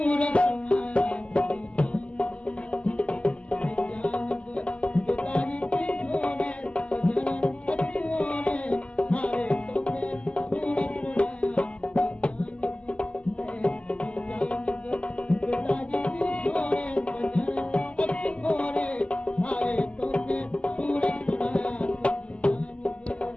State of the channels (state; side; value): late; right; 0.057 ms